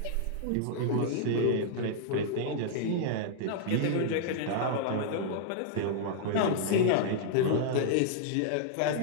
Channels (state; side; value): different; both; correlation -0.01